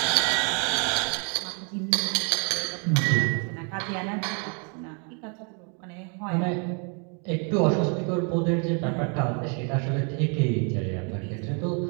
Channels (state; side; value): quieter; left; 37.8 dB